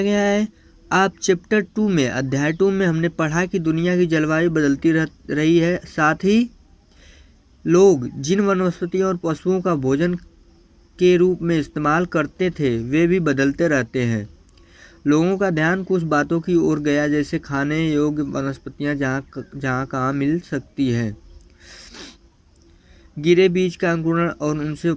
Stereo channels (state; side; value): identical; both; correlation 1.00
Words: गया है। आप चैप्टर 2 में अध्याय 2 में हमने पढ़ा कि दुनिया की जलवायु बदलती रही है, साथ ही लोग जिन वनस्पतियों और पशुओं का भोजन के रूप में इस्तेमाल करते थे वे भी बदलते रहते हैं। लोगों का ध्यान कुछ बातों की ओर गया, जैसे खाने योग्य वनस्पतियां जहाँ कहाँ मिल सकती है, गिरे बीज का अंकुरण और उनसे